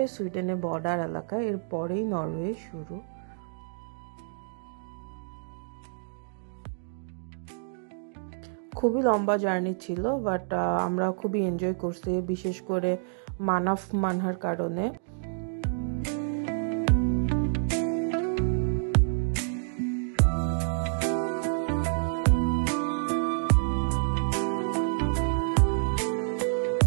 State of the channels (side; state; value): left; silent; digital silence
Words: সুইডেনের বর্ডার এলাকা, এর পরেই নরওয়ে শুরু। খুবই লম্বা জার্নি ছিল, বাট আমরা খুবই এনজয় করছি, বিশেষ করে মানাফ মানহার কারণে।